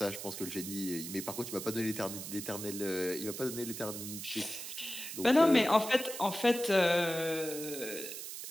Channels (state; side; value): noise; right; hiss, 8 dB below the sound